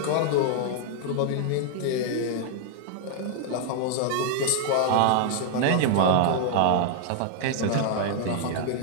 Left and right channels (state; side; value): different; both; correlation 0.00